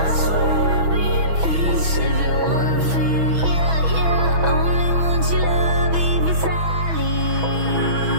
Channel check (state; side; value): late; left; 6.1 ms